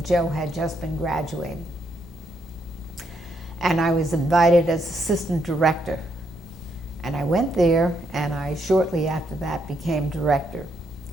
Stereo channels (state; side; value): normal; both; correlation 0.76